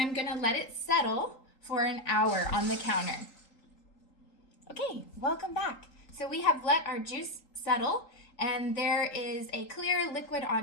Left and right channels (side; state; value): right; late; 3.8 ms